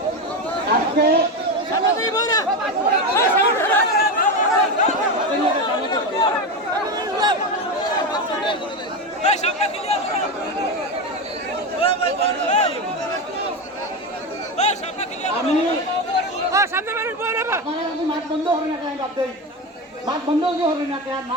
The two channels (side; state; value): both; normal; correlation 0.17